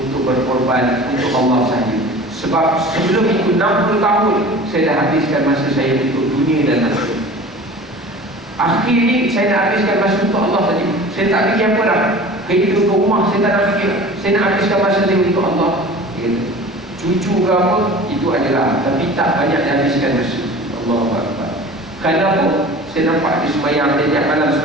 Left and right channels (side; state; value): both; normal; correlation 0.40